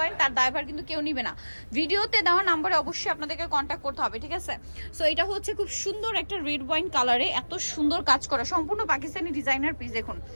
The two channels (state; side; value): inverted; both; correlation -1.00